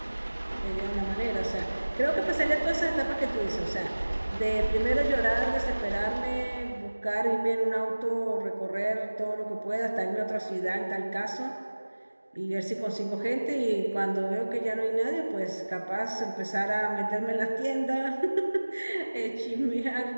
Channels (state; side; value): inverted; both; correlation -1.00